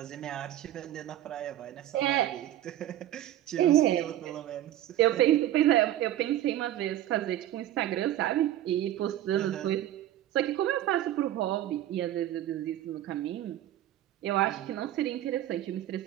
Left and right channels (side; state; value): left; quieter; 13.0 dB